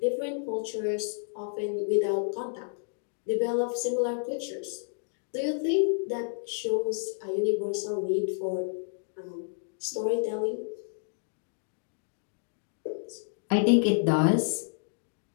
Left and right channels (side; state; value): right; silent; digital silence